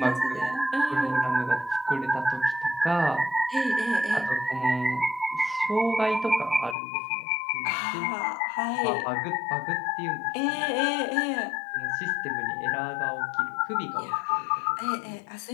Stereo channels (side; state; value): right; drops out; at 6.8 s